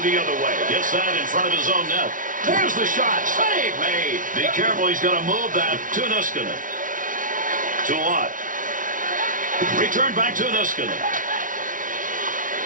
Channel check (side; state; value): left; late; 0.38 ms